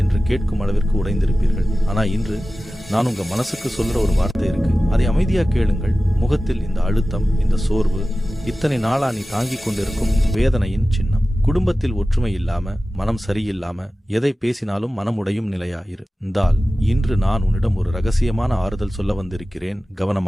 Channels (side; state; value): both; normal; correlation 0.95